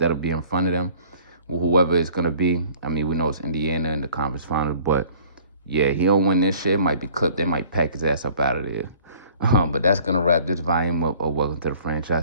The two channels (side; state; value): both; inverted; correlation -0.53